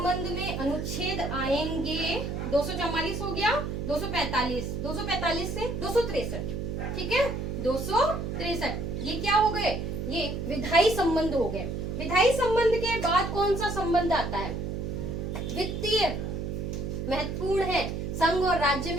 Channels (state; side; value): noise; right; hum, 4 dB below the sound